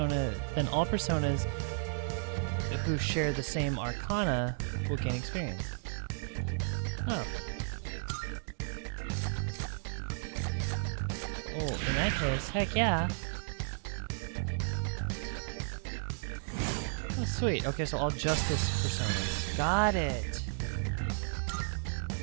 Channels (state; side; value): silent; left; digital silence